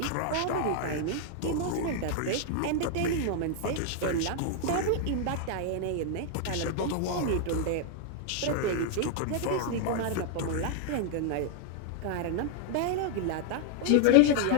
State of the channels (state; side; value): different; both; correlation 0.00